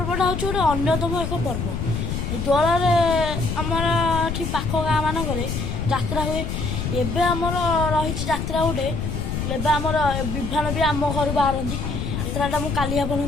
हूँ गोटे अन्यतम एक पर्व। दोल आमर ये पाख गाँ मानक जात्रा हुए। एबे आमर रही जात्रा गोटे एबे आमर विभान भी आम घर बाहर यात्राटा मुझे काली आपको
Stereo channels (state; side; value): noise; left; rumble, 3 dB below the sound